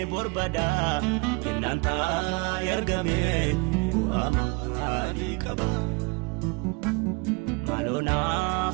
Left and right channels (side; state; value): left; quieter; 27.8 dB